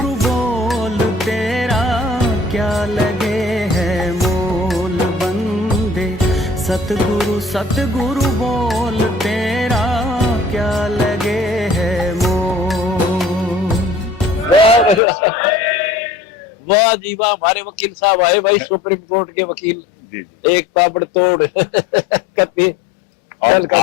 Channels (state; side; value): drops out; right; at 15.0 s